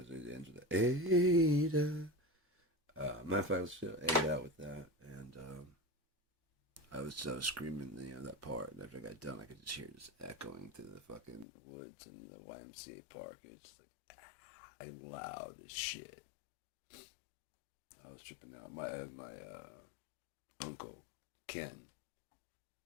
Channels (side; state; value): right; drops out; at 11.5 s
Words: it ends with the Ada. Matter of fact, let's just Ada out with that, and I was screaming, that part. And after I got done, I could just hear it just echoing through the fucking woods and the YMCA park. It's just like, I'm loud as shit. I was tripping out. My uncle Ken,